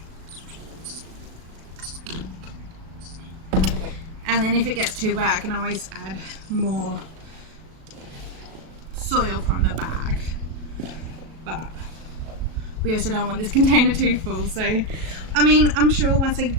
And then if it gets too wet, I can always add more soil from the bag. But we also don't want this container too full. So, I mean, I'm sure once I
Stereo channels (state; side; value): late; left; 37 ms